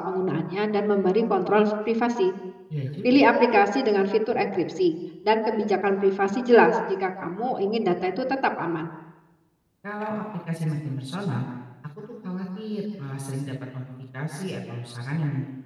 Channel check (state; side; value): identical; both; correlation 1.00